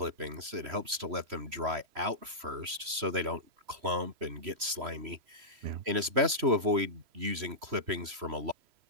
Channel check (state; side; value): late; left; 3.0 ms